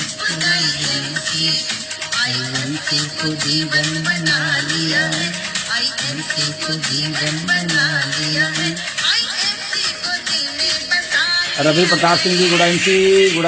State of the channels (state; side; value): identical; both; correlation 1.00